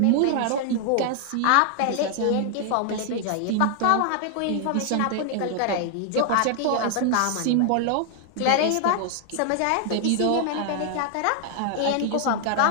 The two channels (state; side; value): different; both; correlation 0.00